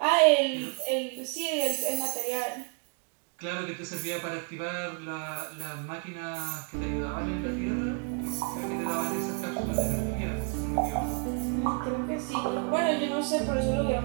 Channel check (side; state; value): left; quieter; 36.7 dB